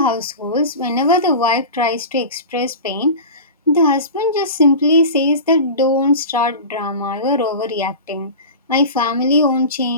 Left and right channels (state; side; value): inverted; both; correlation -0.31